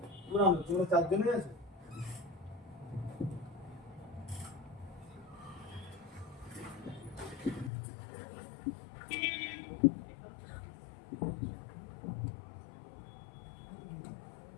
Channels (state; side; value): drops out; right; at 7.7 s